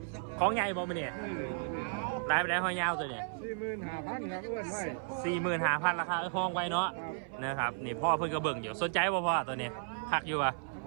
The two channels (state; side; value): silent; left; 55 dB below the other